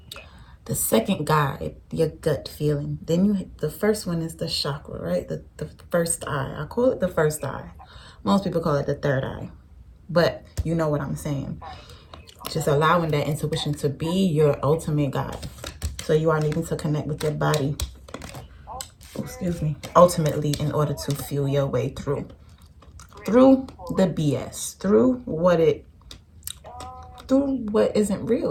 guide, your gut feeling. Then the first one is the chakra, right? The first eye. I call it the first eye. Most people call it the third eye, but you know what I'm saying. Just allowing that intuition to be your ultimate guide. So you are needing to connect with your body, ultimately, in order to feel your way through the BS, through what isn't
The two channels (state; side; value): identical; both; correlation 1.00